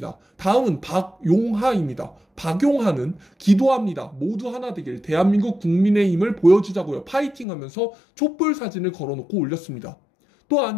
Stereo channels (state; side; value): drops out; right; at 7.5 s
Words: 다음은 박용하입니다. 박용하는 기도합니다. 모두 하나 되길 대한민국 국민의힘을 보여주자고요. 파이팅 하면서 촛불 사진을 걸어놓고 올렸습니다.